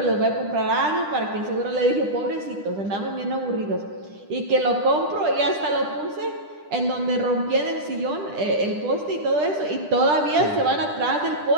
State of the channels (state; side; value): late; left; 10 ms